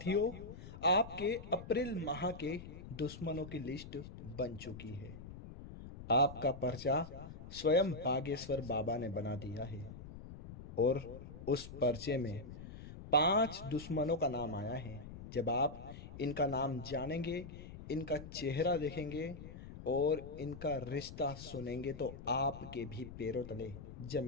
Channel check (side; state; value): left; noise; rumble, 13 dB below the sound